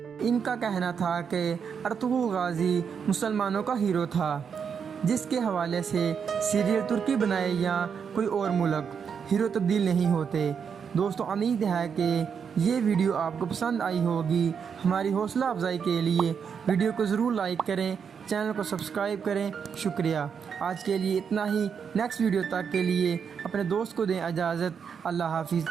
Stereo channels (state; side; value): quieter; left; 6.8 dB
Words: ان کا کہنا تھا کہ ارطغرل غازی مسلمانوں کا ہیرو تھا، جس کے حوالے سے سیریل ترکی بنائے یا کوئی اور ملک، ہیرو تبدیل نہیں ہوتے۔ دوستو، امید ہے کہ یہ ویڈیو آپ کو پسند آئی ہوگی۔ ہماری حوصلہ افزائی کے لیے ویڈیو کو ضرور لائک کریں، چینل کو سبسکرائب کریں۔ شکریہ۔ آج کے لیے اتنا ہی۔ نیکسٹ ویڈیو تک کے لیے اپنے دوست کو دیں اجازت۔ اللہ حافظ۔